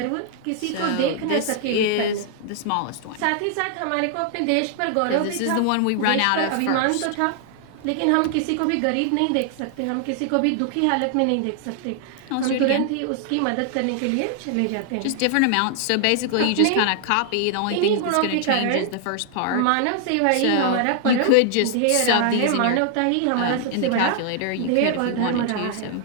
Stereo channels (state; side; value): different; both; correlation 0.00